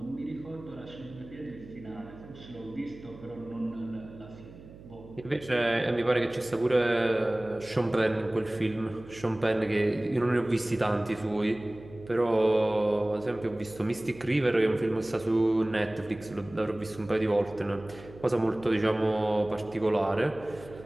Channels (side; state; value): right; noise; hum, 18 dB below the sound